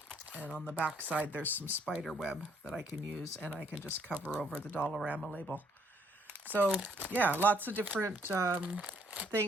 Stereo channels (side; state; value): both; normal; correlation 0.67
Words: And on the back side, there's some spider web that I can use, and I can just cover over the Dollarama label. So yeah, lots of different